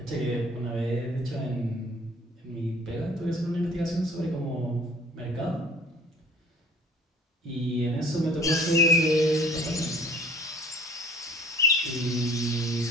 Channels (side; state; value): both; normal; correlation 0.50